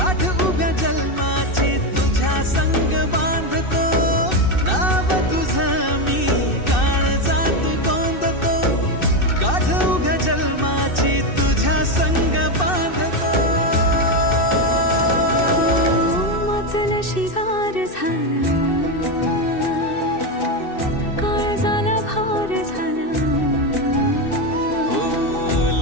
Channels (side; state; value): right; late; 2.6 ms